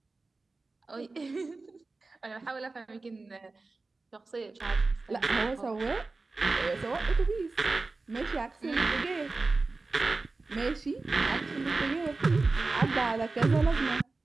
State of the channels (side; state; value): left; quieter; 3.6 dB